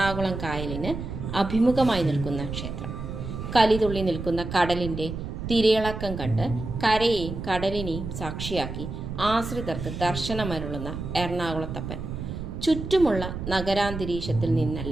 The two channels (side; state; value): right; noise; rumble, 7 dB below the sound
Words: കായലിന് അഭിമുഖമായി നിൽക്കുന്ന ക്ഷേത്രം. കലിതുള്ളി നിൽക്കുന്ന കടലിന്റെ തിരയിളക്കം കണ്ട് കരയെയും കടലിനെയും സാക്ഷിയാക്കി ആശ്രിതർക്ക് ദർശനമരുളുന്ന എറണാകുളത്തപ്പൻ ചുറ്റുമുള്ള നഗരാന്തരീക്ഷത്തിൽ